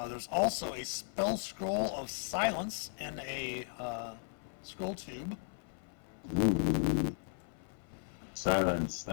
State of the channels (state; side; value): silent; right; 54 dB below the other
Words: There's also a spell scroll of silence in a scroll tube. Ooh. Silence.